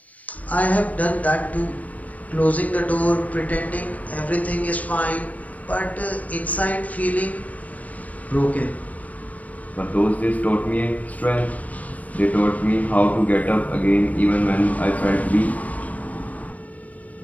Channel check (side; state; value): right; late; 0.071 ms